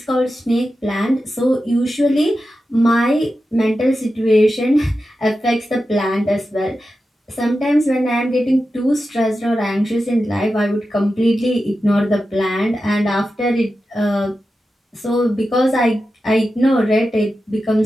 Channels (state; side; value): normal; both; correlation 0.91